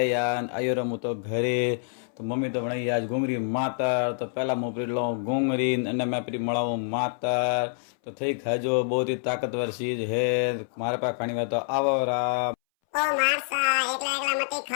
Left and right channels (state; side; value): silent; right; 60 dB below the other